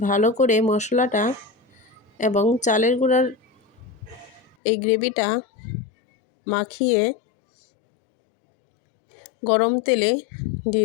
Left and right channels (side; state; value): right; drops out; at 4.5 s